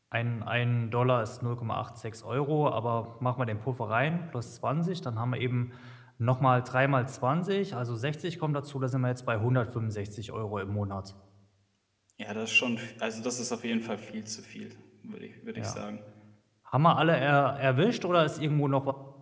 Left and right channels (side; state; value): both; identical; correlation 1.00